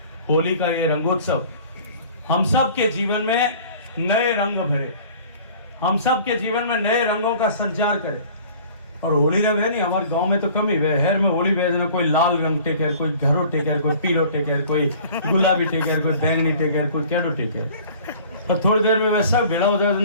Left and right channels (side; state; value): both; inverted; correlation -0.48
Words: होली का ये रंगोत्सव हम सब के जीवन में नए रंग भरे, हम सब के जीवन में नए रंगों का संचार करे। और होली जब है नहीं, हमारे गांव में तो कम ही हेर में होली भेजना, कोई लाल रंग टेकर, कोई घरो टेकर, कोई पीलो टेकर, कोई गुलाबी टेकर, कोई बैंगनी टेकर, कोई कैडो टेकर। तो थोड़ी देर में वैसा भिड़ा हो